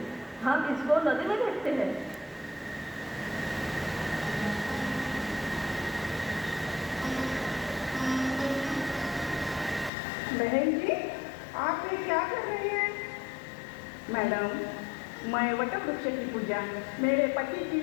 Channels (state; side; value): drops out; right; at 9.9 s